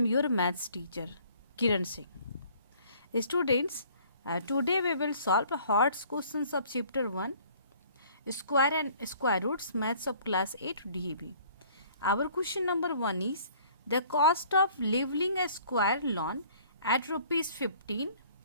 your maths teacher Kiran Singh. Students, today we will solve hot questions of chapter 1 square and square roots maths of class 8 DAB. Our question number 1 is the cost of leveling a square lawn at rupees 15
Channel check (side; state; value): both; inverted; correlation -0.55